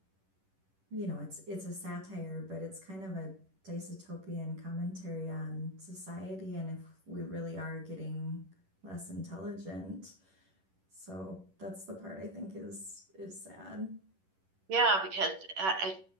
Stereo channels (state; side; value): late; left; 11 ms